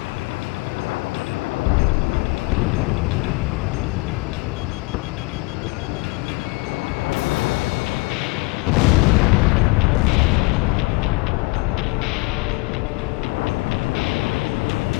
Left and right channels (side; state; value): right; quieter; 24.9 dB